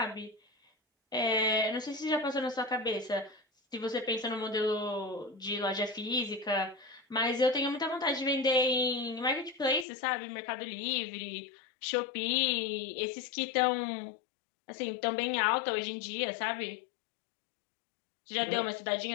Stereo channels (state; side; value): drops out; right; at 9.9 s